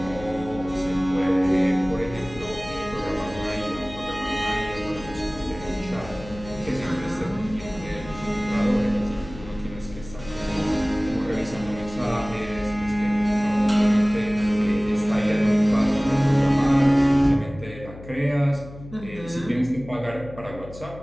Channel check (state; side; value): noise; left; hum, 16 dB below the sound